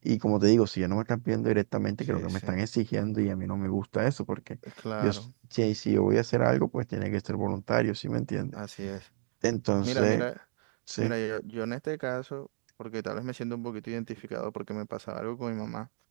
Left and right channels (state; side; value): silent; left; digital silence